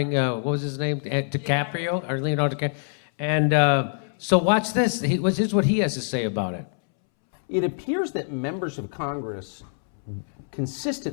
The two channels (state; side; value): silent; right; 62 dB below the other